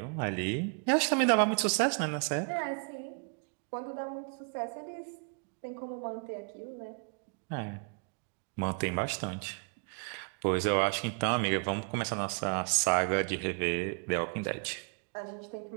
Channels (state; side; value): quieter; left; 39.3 dB